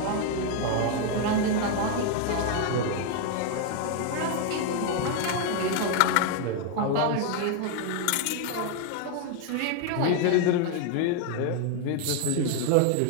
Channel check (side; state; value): both; different; correlation 0.00